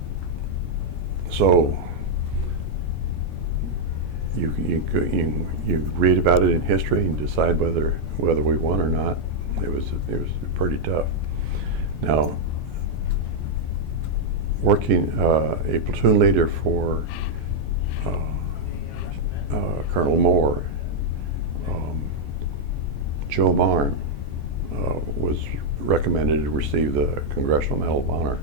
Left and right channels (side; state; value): left; late; 9.9 ms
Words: so you read about it in history and decide whether we won or not. It was pretty tough. Now, working a platoon leader for Colonel Moore, Joe Mond was recommended to receive the Congressional Medal of Honor